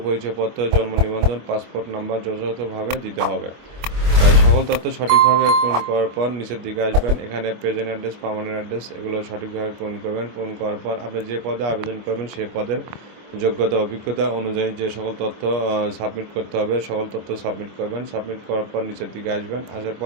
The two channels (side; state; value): left; late; 25 ms